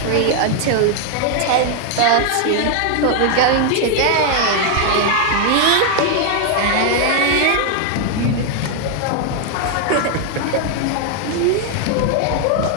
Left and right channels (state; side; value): different; both; correlation 0.00